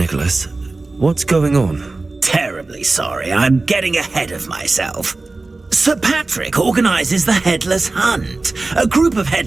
What's going on? Terribly sorry, I'm getting ahead of myself. Sir Patrick organises the Headless Hunt, a group of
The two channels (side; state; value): left; quieter; 3.4 dB